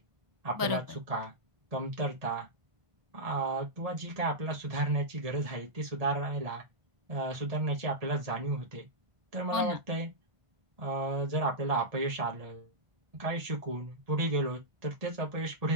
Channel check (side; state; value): left; late; 1.5 ms